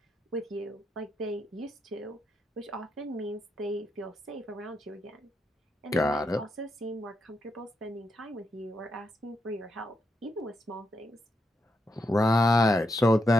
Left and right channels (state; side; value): normal; both; correlation 0.82